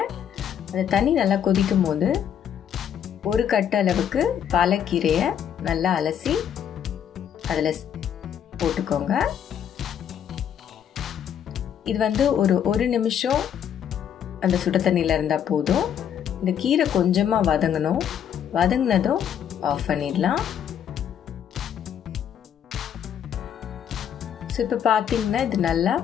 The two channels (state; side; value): quieter; right; 9.0 dB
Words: அந்த தண்ணி நல்லா கொதிக்கும் போது ஒரு கட்டு அளவுக்கு பாலக்கீரையை நல்லா அலசி அதில் போட்டுக்கோங்க. இது ஒரு நிமிஷம் அந்த சுட தண்ணியில் இருந்தால் போதும். இந்த கீரை கொஞ்சமாக வதங்கணும். வதங்கினதும் ஆஃப் பண்ணிடலாம். ஸோ இப்போ பார்த்தீங்கன்னா இது நல்லா